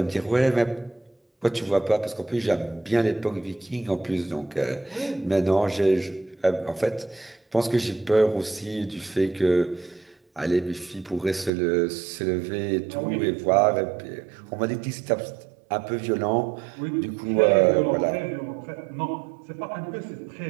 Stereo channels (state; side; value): drops out; left; at 11.5 s